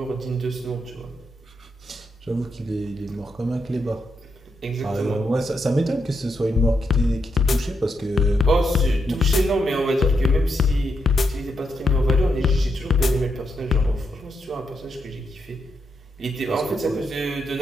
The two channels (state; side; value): normal; both; correlation 0.82